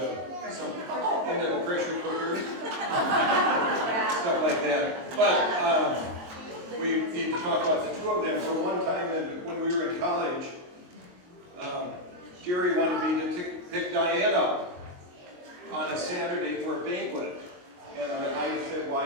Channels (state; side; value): late; left; 22 ms